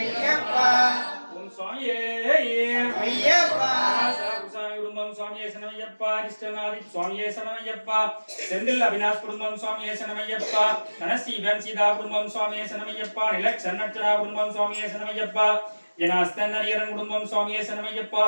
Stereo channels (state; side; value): inverted; both; correlation -1.00